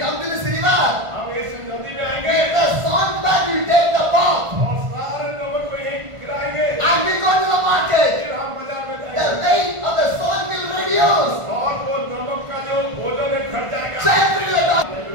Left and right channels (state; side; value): late; left; 1.5 ms